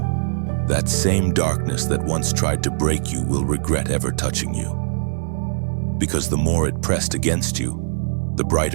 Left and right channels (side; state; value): left; silent; digital silence